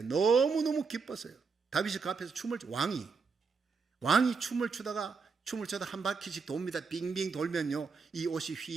너무너무 기뻤어요. 다윗이 그 앞에서 왕이 춤을 추다가 한 바퀴씩 돕니다. 빙빙 돌면요, 이 옷이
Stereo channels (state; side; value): quieter; left; 5.0 dB